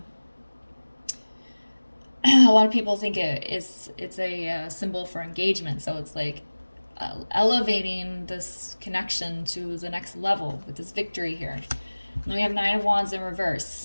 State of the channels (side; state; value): both; inverted; correlation -1.00